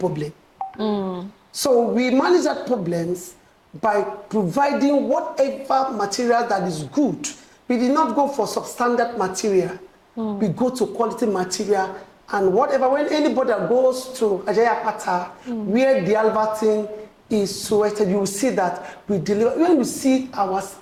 So we manage that problems by providing whatever material that is good. We did not go for substandard material. We go to quality material, and whatever, when anybody that goes to Ajayapata, where the Albertine is situated, you will see that we deliver. When you see our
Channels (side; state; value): both; identical; correlation 1.00